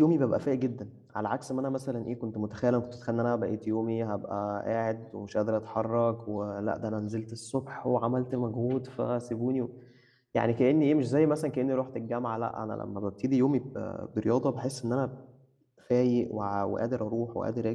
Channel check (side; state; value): both; identical; correlation 1.00